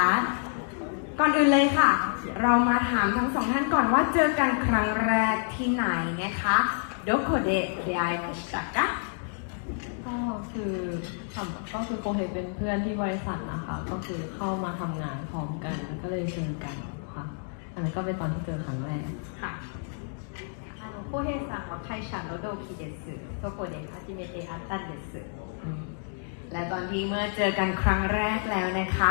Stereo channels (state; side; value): silent; right; 59 dB below the other